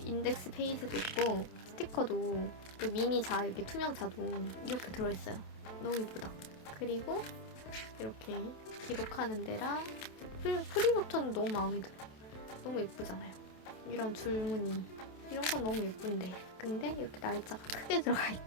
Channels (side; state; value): right; late; 27 ms